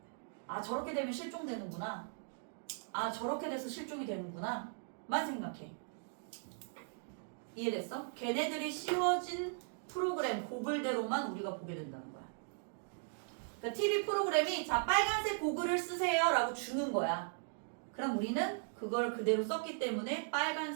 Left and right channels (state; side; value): silent; left; digital silence